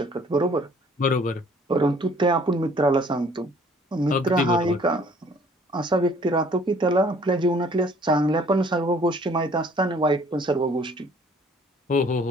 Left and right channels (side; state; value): both; normal; correlation 0.57